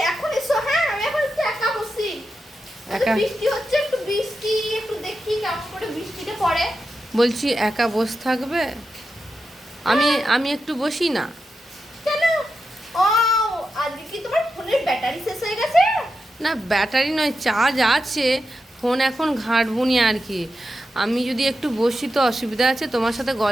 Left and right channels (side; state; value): both; normal; correlation 0.89